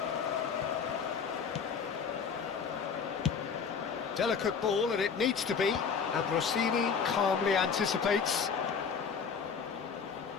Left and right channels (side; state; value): right; quieter; 6.2 dB